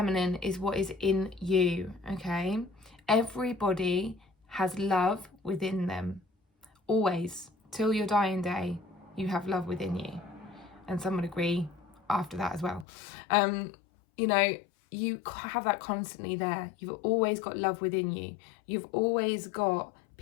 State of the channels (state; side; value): drops out; right; at 12.9 s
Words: is what is in you, okay? Everybody has love within them. Always, till your dying day, you have love within you. And some would agree after that as well. You have that constantly there. You've always got love within you. You've always got